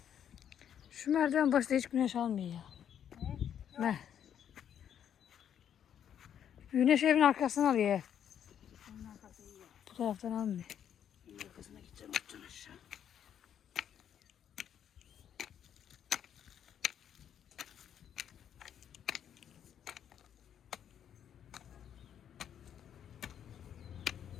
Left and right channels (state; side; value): quieter; right; 9.3 dB